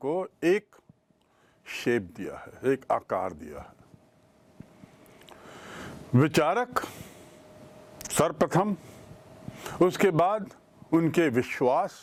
एक शेप दिया है, एक आकार दिया है। विचारक सर्वप्रथम, उसके बाद उनके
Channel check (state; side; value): identical; both; correlation 1.00